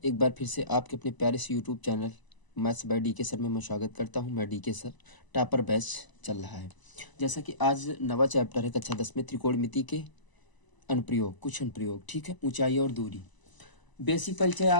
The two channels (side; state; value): right; late; 1.0 ms